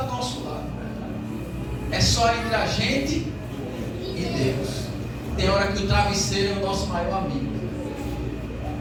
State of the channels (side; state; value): both; identical; correlation 1.00